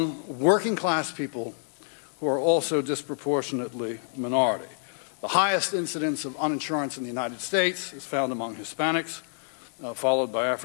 working class people who are also disproportionately minority. The highest incidence of uninsurance in the United States is found among Hispanics, followed by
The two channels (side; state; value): right; silent; digital silence